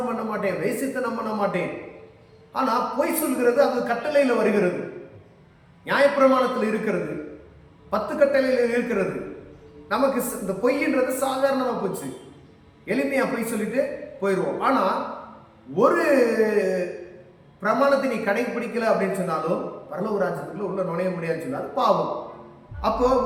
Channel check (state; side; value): identical; both; correlation 1.00